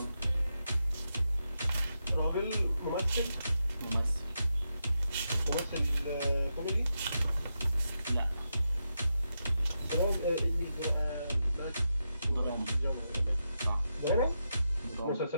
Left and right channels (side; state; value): both; inverted; correlation -0.86